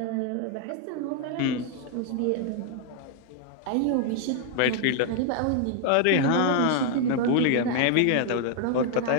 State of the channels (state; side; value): different; both; correlation 0.00